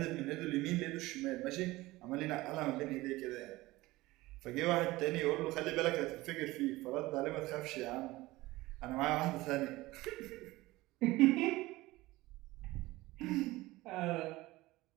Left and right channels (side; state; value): left; quieter; 19.2 dB